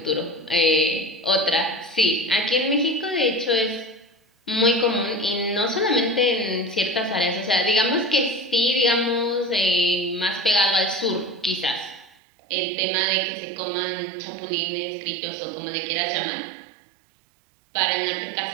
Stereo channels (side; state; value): left; drops out; at 12.1 s